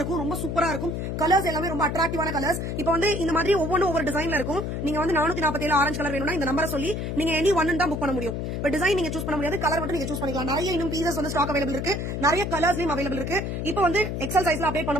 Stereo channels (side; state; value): left; noise; hum, 3 dB below the sound